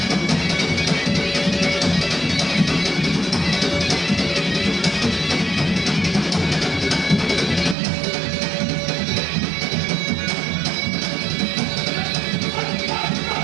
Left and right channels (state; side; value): drops out; left; at 7.8 s